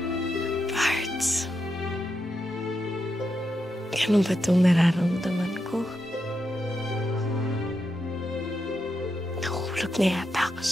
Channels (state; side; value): normal; both; correlation 0.85